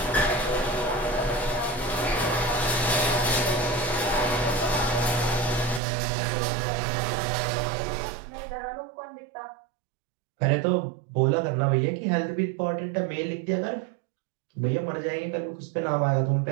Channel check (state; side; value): drops out; left; at 5.8 s